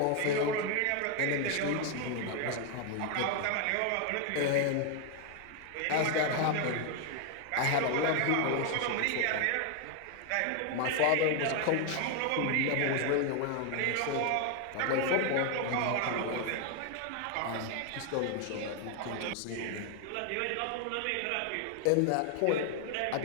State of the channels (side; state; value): both; different; correlation 0.01